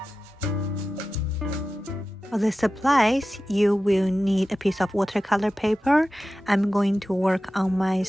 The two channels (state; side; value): normal; both; correlation 0.94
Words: For the supplies, you will need a piece of watercolor paper. I'm going to work on my